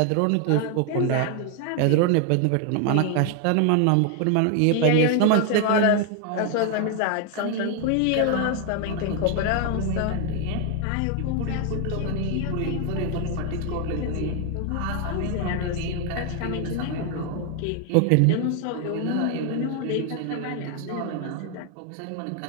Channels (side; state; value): both; different; correlation 0.00